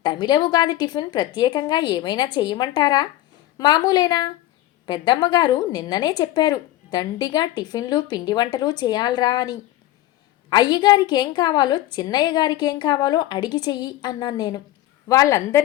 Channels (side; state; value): right; quieter; 15.0 dB